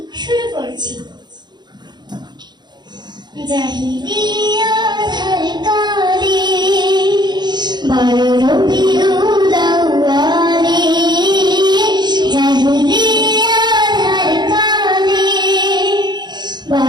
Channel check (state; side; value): late; left; 0.21 ms